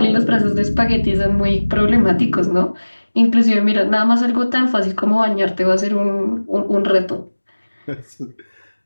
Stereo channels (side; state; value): both; inverted; correlation -1.00